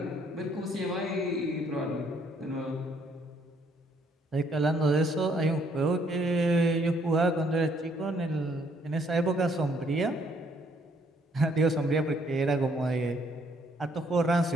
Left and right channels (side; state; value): both; normal; correlation 0.67